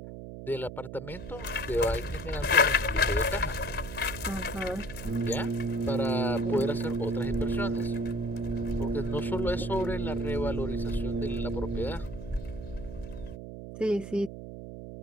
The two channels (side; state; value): right; noise; hum, 11 dB below the sound